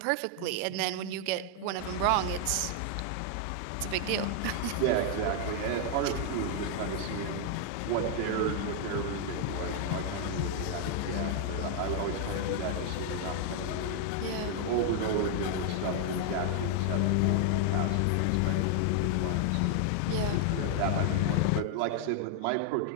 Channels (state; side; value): different; both; correlation 0.00